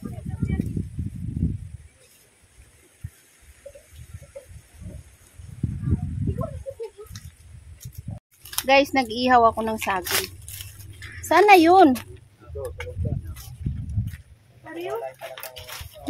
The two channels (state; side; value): identical; both; correlation 1.00